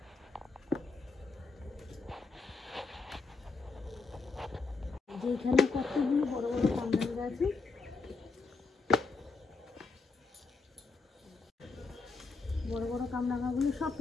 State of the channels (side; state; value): right; quieter; 4.1 dB